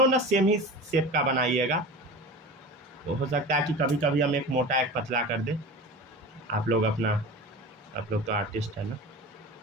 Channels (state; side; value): normal; both; correlation 0.33